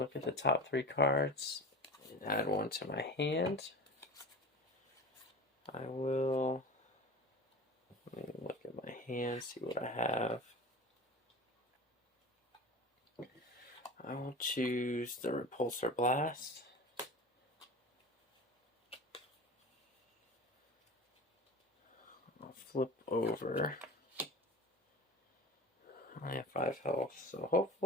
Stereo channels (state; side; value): normal; both; correlation 0.32